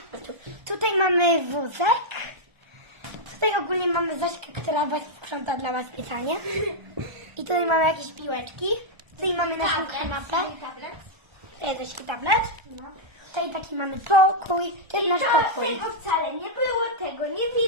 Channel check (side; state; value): left; late; 1.3 ms